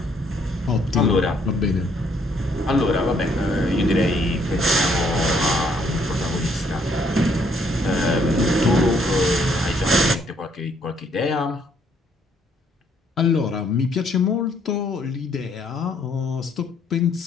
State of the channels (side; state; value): both; normal; correlation 0.67